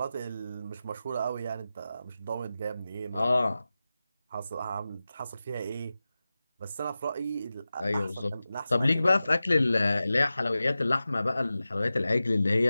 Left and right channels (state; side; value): inverted; both; correlation -0.94